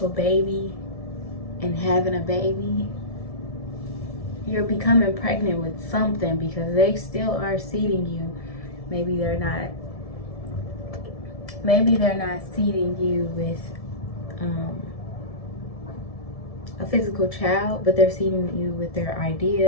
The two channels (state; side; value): late; right; 1.7 ms